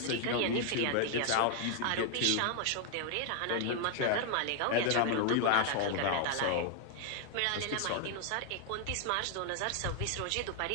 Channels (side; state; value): both; different; correlation 0.00